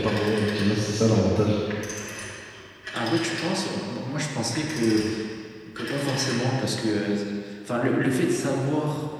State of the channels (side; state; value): both; identical; correlation 1.00